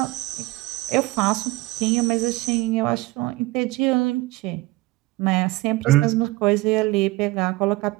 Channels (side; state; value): left; quieter; 20.4 dB